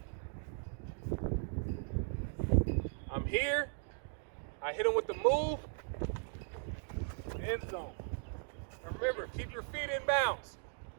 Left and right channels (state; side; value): silent; left; 53 dB below the other